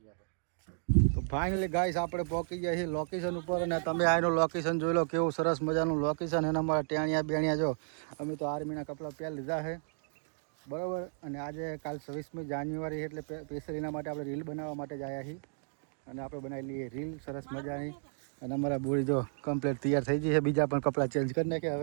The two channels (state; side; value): silent; left; digital silence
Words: આપણે. તો ફાઇનલી ગાઈસ આપણે પહોંચી ગયા છીએ લોકેશન ઉપર. અને તમે આનું લોકેશન જોઈ લો કેવું સરસ મજાનું લોકેશન. એના અમારા ટેણિયા બેણિયા જો અમે તો આર્મીના કપડાં પહેરી લીધા છે બરાબર. અને આજે કાલ 26મી જાન્યુઆરી એટલે સ્પેશિયલ માટે આપણે રીલ બનાવવા માટે જ આવ્યા છીએ. અને આપણે બનાવી લઈએ રીલ સરસ મજાની. અને અમારા બોડી જો કમ્પ્લીટ તૈયાર થઈ ગઈ છે. બીજા પણ કપડાં ચેન્જ કરી નાખ્યા